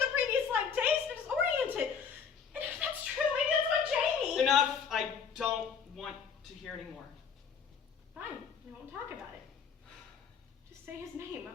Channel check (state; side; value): quieter; right; 6.5 dB